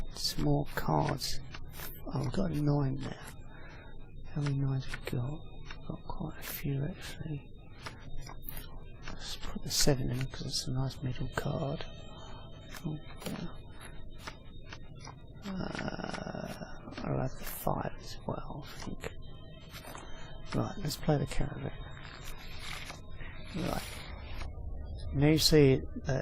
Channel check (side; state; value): both; identical; correlation 1.00